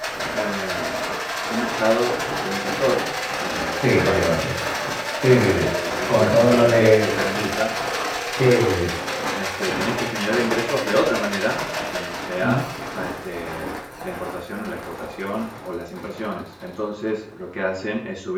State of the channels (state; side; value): identical; both; correlation 1.00